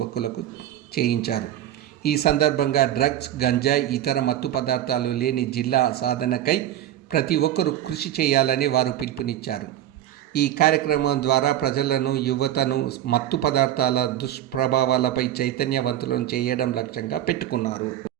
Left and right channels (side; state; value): left; quieter; 12.2 dB